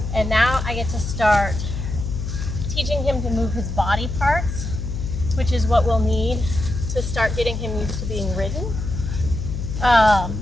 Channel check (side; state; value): left; noise; hum, 5 dB below the sound